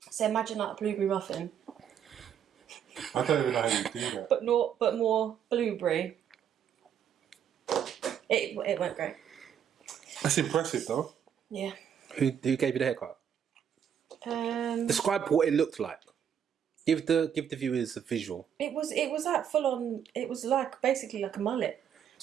So imagine like a blueberry muffin, I don't even know how you do that. but more blueberry. It went great. That's impressive, though. Yeah. Who gave you the haircut? Describe what it looked like. Give the viewers a visual. It was like full on. It was like basically like a mullet.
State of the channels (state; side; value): quieter; left; 8.7 dB